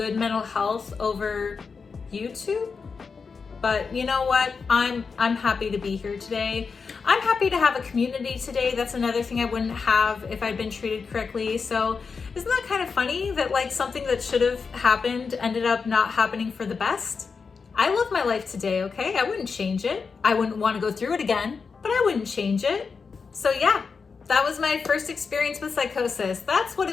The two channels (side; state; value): right; quieter; 5.2 dB